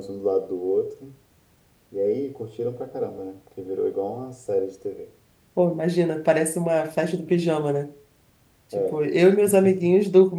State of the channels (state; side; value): identical; both; correlation 1.00